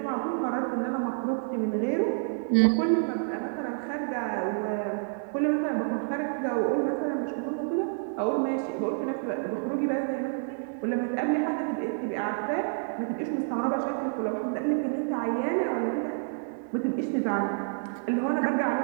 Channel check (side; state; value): left; silent; digital silence